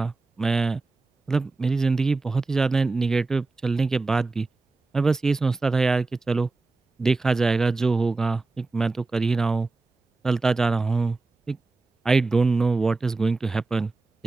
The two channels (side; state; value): left; quieter; 3.6 dB